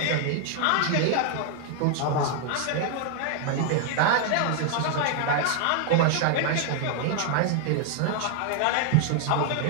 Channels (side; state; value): both; different; correlation 0.00